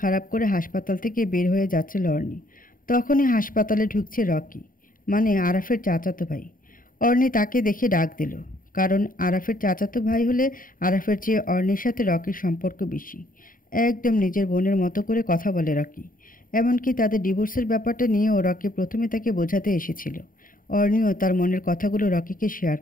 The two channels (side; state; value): right; late; 0.40 ms